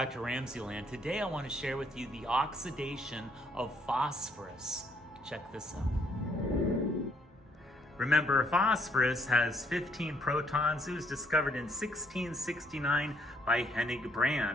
to RamZland. Today I want to share with you the oxidation of phosphorus. Check this out. Remember, phosphorus has 15 protons. It was discovered in 1669 by Hennig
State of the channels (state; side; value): normal; both; correlation 0.68